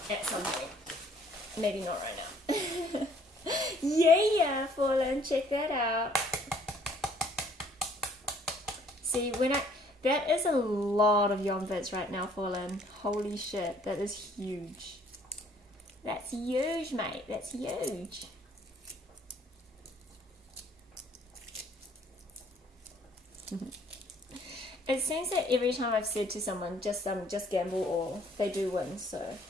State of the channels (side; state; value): both; normal; correlation 0.60